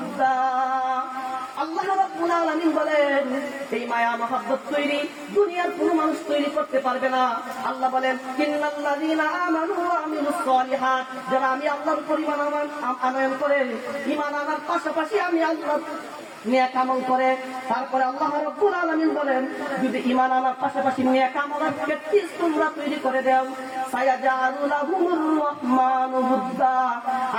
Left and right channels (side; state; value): both; identical; correlation 1.00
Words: আল্লাহ রাব্বুল আলামিন বলেন, এই মায়া মহব্বত তৈরি দুনিয়ার কোনো মানুষ তৈরি করতে পারবে না। আল্লাহ বলেন, ইন্নাল্লাযীনা আমানু ওয়া আমিলুস সালিহাত, যারা আমি আল্লাহর উপর ঈমান আনয়ন করে, ঈমান আনার পাশাপাশি আমি আল্লাহর নেক আমল করে, তারপরে আল্লাহ রাব্বুল আলামিন বলেন, যদি ঈমান আনার পাশাপাশি নেক আমলের প্র্যাকটিস তোমরা তৈরি করে দাও, সায়াজআলু লাহুমুর রাহমানু বুদ্দা,